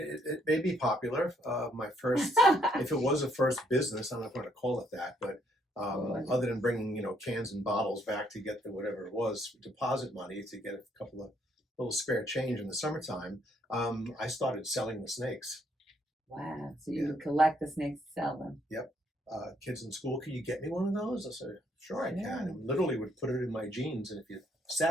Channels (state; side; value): normal; both; correlation 0.70